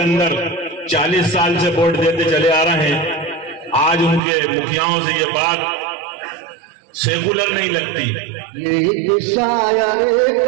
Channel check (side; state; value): left; drops out; at 4.2 s